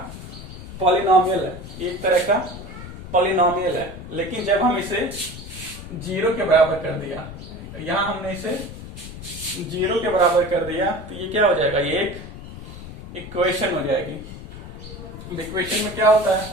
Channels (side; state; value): left; noise; rumble, 12 dB below the sound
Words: पॉलिनोमियल है, ये एक तरह का पॉलिनोमियल है। लेकिन जब हम इसे जीरो के बराबर कर दिया, यहां हमने इसे जीरो के बराबर कर दिया, तो ये क्या हो जाएगा, ये एक इक्वेशन हो जाएगी। इक्वेशन में क्या होता